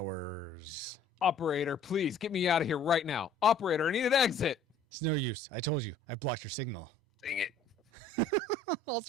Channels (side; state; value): right; quieter; 3.4 dB